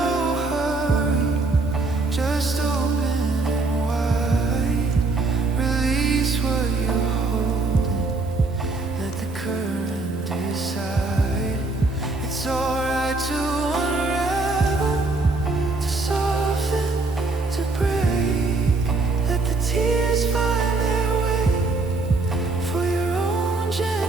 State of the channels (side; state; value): left; quieter; 3.4 dB